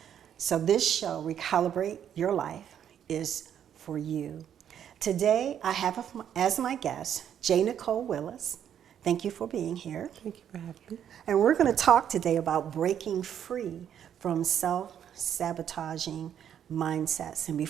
So this show, Recalibrate Your Life, is for you. Today, I have as my guest, JNicolle Willis. Thank you for being here. Thank you for having me. And we're going to talk today about breaking free from self-sabotaging mindsets. And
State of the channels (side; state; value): left; quieter; 9.4 dB